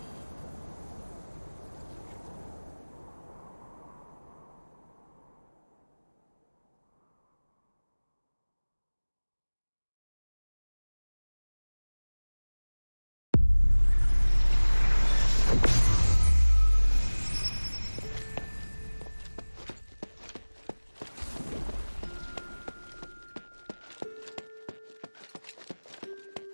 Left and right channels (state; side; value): inverted; both; correlation -1.00